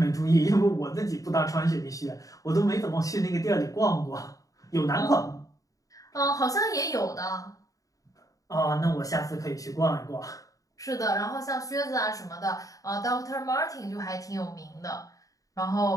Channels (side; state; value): right; late; 0.17 ms